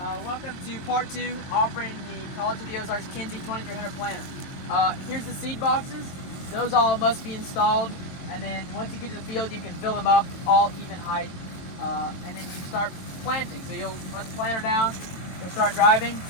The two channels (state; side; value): late; right; 23 ms